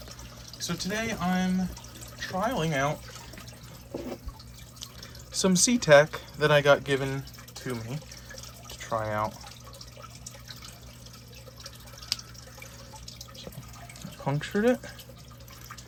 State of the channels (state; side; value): identical; both; correlation 1.00